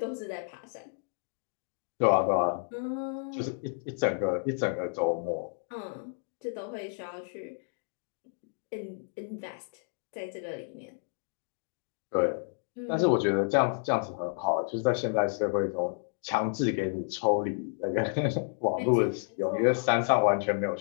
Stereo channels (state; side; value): silent; right; 57 dB below the other